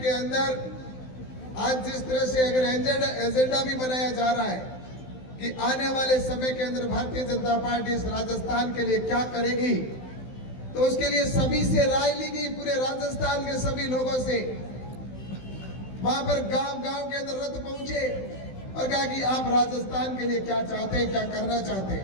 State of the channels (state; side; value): late; right; 16 ms